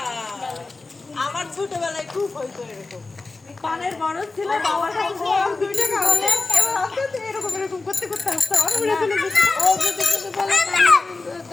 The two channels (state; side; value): quieter; right; 3.6 dB